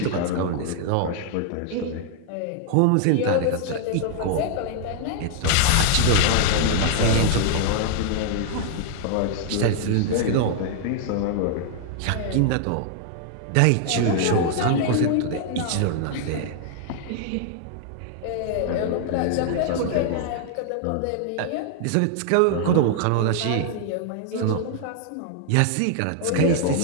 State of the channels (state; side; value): different; both; correlation -0.01